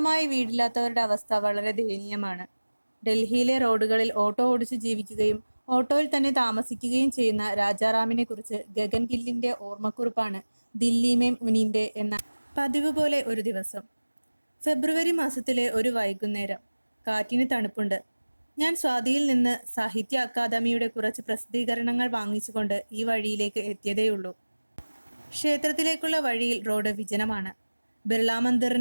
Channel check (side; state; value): both; inverted; correlation -1.00